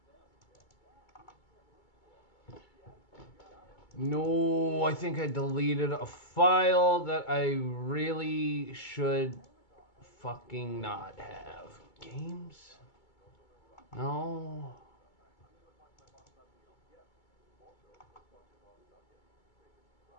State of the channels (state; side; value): late; right; 2.2 ms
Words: No, I think I deleted a file that I really should fucking not have. Games? No.